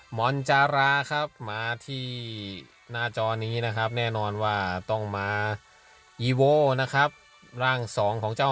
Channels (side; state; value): both; identical; correlation 1.00